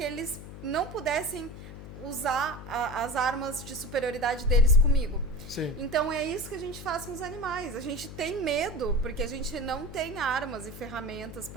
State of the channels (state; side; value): noise; left; hum, 12 dB below the sound